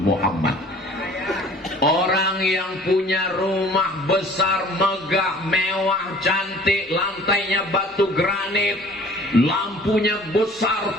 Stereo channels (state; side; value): normal; both; correlation 0.50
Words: Orang yang punya rumah besar, megah, mewah, cantik, lantainya batu granit, lampunya besar